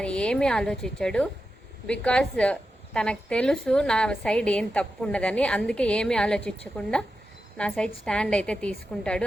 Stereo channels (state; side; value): normal; both; correlation 0.90